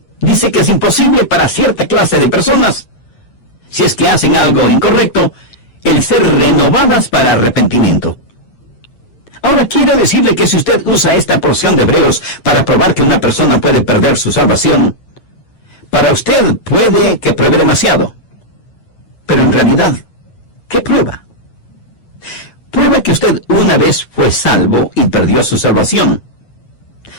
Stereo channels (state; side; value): late; right; 9.0 ms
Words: Dice que es imposible para cierta clase de personas, si es que hacen algo incorrecto, el ser renovadas para arrepentimiento. Ahora quiero decirle que si usted usa esta porción de Hebreos para probar que una persona puede perder su salvación, para usted puede que pruebe demasiado. Pero en realidad, ¿qué prueba? Prueba que usted una vez fue salvo y perdió su salvación.